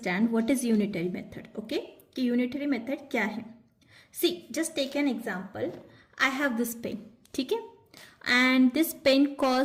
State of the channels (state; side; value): identical; both; correlation 1.00